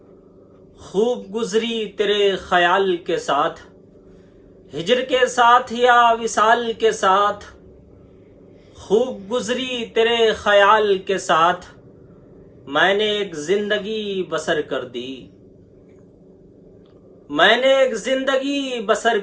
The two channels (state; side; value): identical; both; correlation 1.00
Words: خوب گزری تیرے خیال کے ساتھ۔ ہجر کے ساتھ یا وصال کے ساتھ، خوب گزری تیرے خیال کے ساتھ، میں نے ایک زندگی بسر کر دی، میں نے ایک زندگی بسر